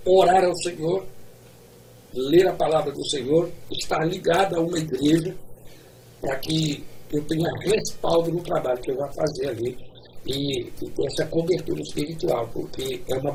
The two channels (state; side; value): identical; both; correlation 1.00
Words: orar ao Senhor, ler a palavra do Senhor, estar ligado a uma igreja para que eu tenha respaldo no trabalho que eu vou fazer ali e ter essa cobertura espiritual, porque é uma